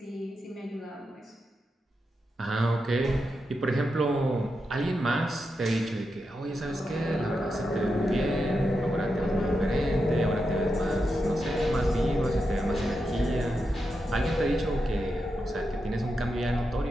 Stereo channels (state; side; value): normal; both; correlation 0.87